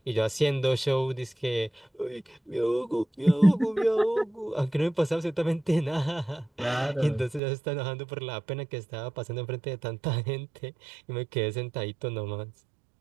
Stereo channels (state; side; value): drops out; left; at 7.4 s